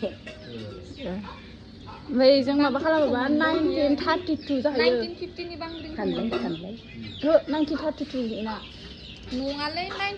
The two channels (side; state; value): both; identical; correlation 1.00